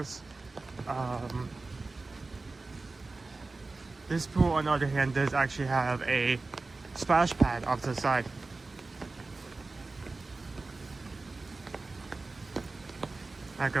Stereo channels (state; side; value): quieter; left; 3.5 dB